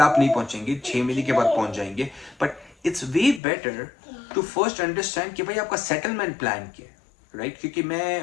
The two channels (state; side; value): drops out; right; at 3.4 s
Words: आप नहीं पहुंचेंगे, 6 महीने के बाद पहुंच जाएंगे, but it's way better to first understand कि भाई आपका सेटलमेंट प्लान क्या है, राइट? क्योंकि